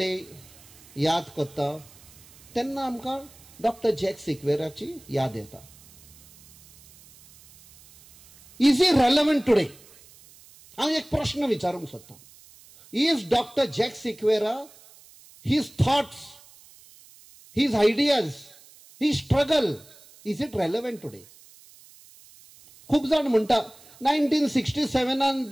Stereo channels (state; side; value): noise; right; hiss, 24 dB below the sound